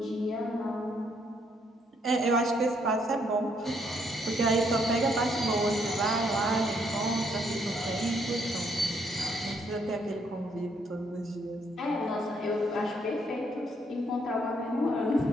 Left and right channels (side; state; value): both; normal; correlation 0.71